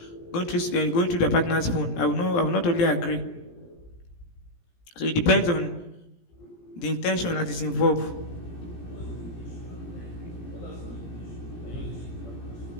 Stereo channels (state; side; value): late; right; 17 ms